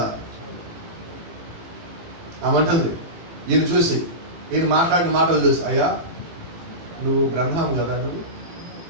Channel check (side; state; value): left; late; 18 ms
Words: ఆమంటుంది, ఈయన చూసి, ఈయన మాట్లాడిన మాటలు చూసి, అయ్యా నువ్వు బ్రహ్మం కదా నువ్వు